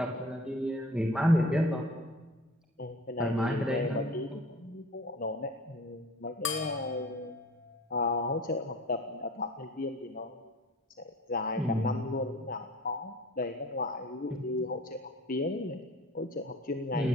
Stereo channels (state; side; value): normal; both; correlation 0.43